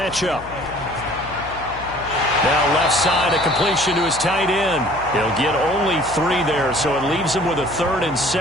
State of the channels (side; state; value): left; noise; hum, 16 dB below the sound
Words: Now left side, a completion to his tight end. He'll get only 3 there, so it leaves him with a 3rd and